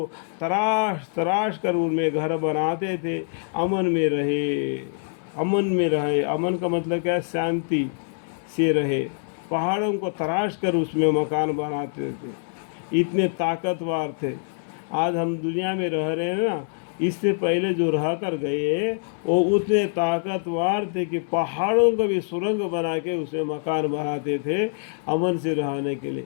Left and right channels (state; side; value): silent; right; 60 dB below the other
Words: تراش تراش کر ان میں گھر بناتے تھے، امن میں رہے، امن میں رہے۔ امن کا مطلب کیا ہے؟ شانتی سے رہے۔ پہاڑوں کو تراش کر اس میں مکان بناتے تھے، اتنے طاقتور تھے۔ آج ہم دنیا میں رہ رہے ہیں نا، اس سے پہلے جو رہ کر گئے وہ اتنے طاقتور تھے کہ پہاڑوں کو بھی سرنگ بنا کے اس میں مکان بناتے تھے امن سے رہنے کے لیے۔